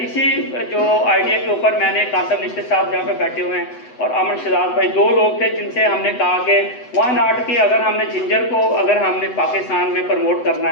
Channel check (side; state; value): right; late; 8.0 ms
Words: इसी जो आइडिया के ऊपर मैंने कासम निश्चित साहब जहाँ पे बैठे हुए हैं और अमन शहजाद भाई, 2 लोग थे जिनसे हमने कहा कि वाई नॉट कि अगर हमने जिंजर को अगर हमने पाकिस्तान में प्रमोट करना